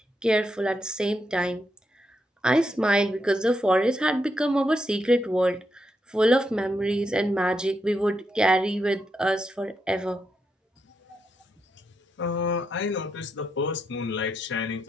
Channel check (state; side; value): normal; both; correlation 0.82